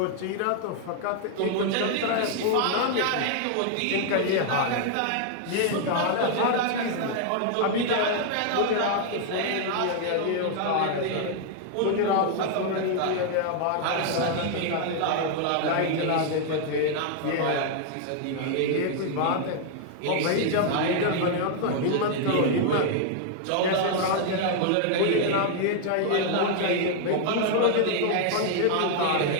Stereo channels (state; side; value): different; both; correlation 0.00